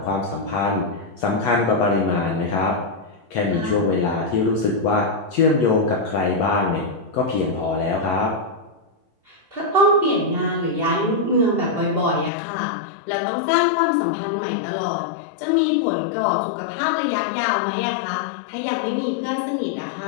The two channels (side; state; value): right; drops out; at 12.3 s